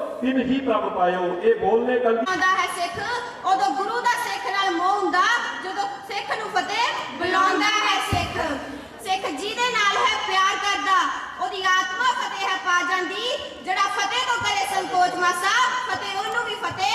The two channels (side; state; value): both; identical; correlation 1.00